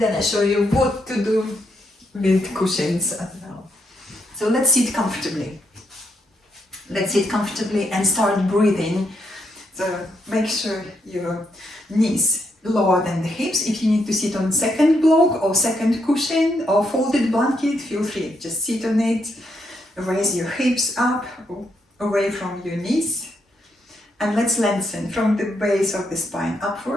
I show you what to do with cushions as well. So let's sit comfortably. Let's sit comfortably and start breathing. So make sure your knees lower than the hips. If you need to sit on second block or second cushion or folded blanket, feel free. Just sit on it. Raise your hips up, away from your knees. And let's lengthen from the base of the spine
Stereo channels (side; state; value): both; normal; correlation 0.78